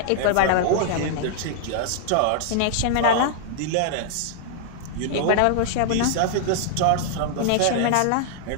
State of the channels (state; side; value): different; both; correlation -0.01